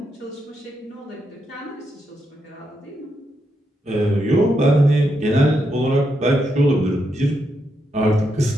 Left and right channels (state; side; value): normal; both; correlation 0.82